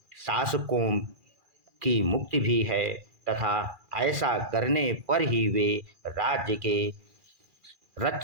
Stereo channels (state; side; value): late; left; 2.4 ms